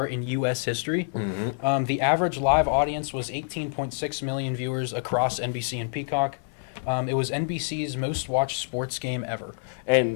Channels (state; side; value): silent; right; digital silence